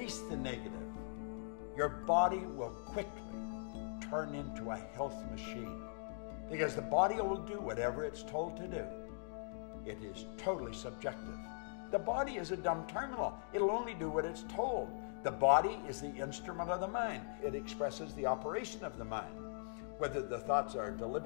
the negative, your body will quickly turn into a health machine. Because the body will do whatever it's told to do. It is totally subjective. The body is a dumb terminal. It'll only do what it's told. The body is the instrument of the mind. It expresses the operation of the mind, whether the thoughts are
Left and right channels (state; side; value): silent; right; digital silence